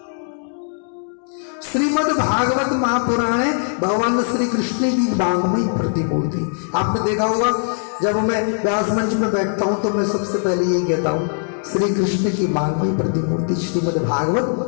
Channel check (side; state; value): right; silent; 66 dB below the other